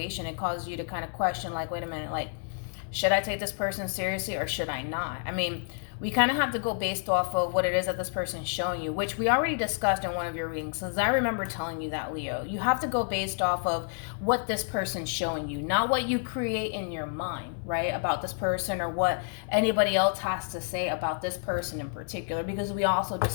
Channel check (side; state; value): right; silent; 58 dB below the other